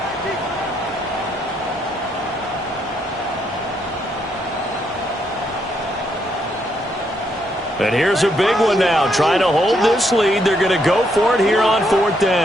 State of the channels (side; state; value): both; normal; correlation 0.75